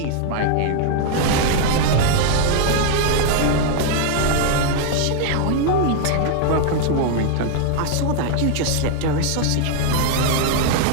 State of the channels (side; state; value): both; different; correlation 0.00